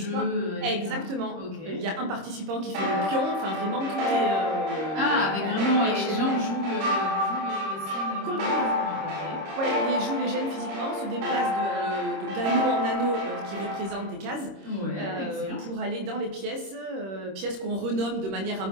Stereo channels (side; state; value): left; late; 26 ms